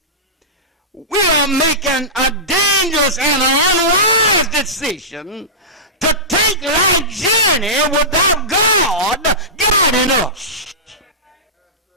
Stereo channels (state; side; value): normal; both; correlation -0.18